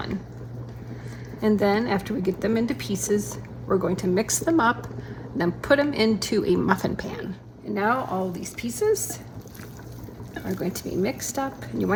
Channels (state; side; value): identical; both; correlation 1.00